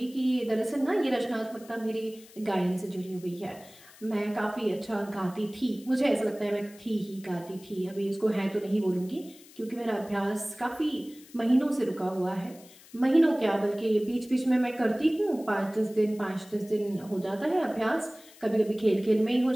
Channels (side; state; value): left; noise; hiss, 23 dB below the sound